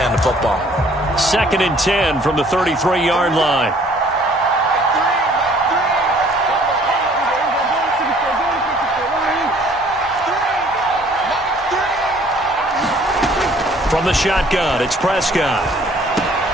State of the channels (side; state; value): both; normal; correlation 0.57